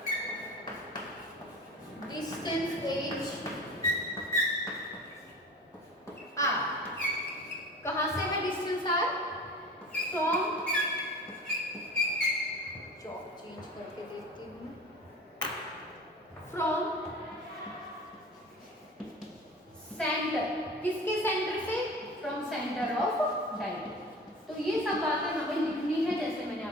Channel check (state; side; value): normal; both; correlation 0.37